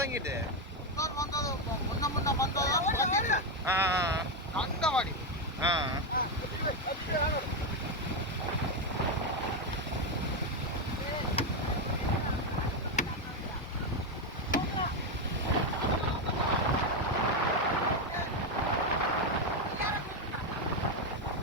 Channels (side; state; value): both; normal; correlation 0.07